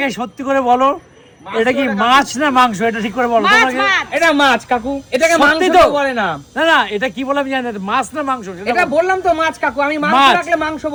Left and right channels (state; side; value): identical; both; correlation 1.00